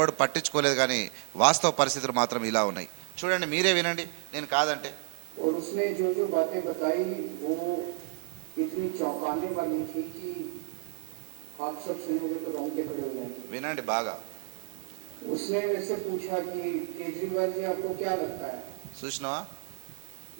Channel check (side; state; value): left; silent; digital silence